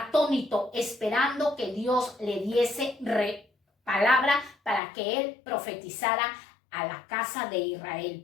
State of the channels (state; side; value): drops out; right; at 4.8 s